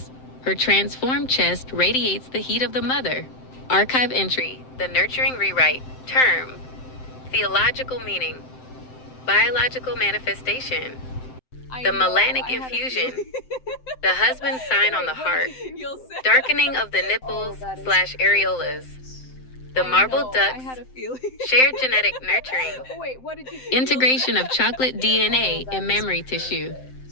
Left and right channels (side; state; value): right; late; 7.7 ms